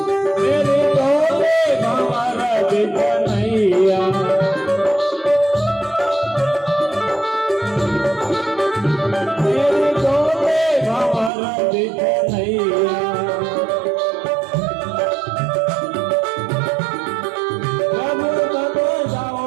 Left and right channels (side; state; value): left; drops out; at 11.3 s